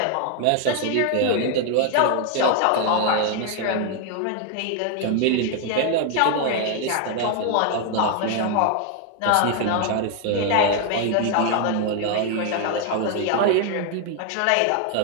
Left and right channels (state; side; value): different; both; correlation 0.00